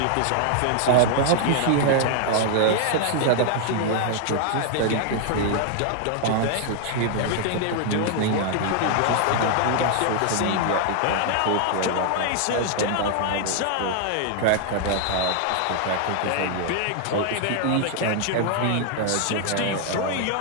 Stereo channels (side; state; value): both; different; correlation 0.00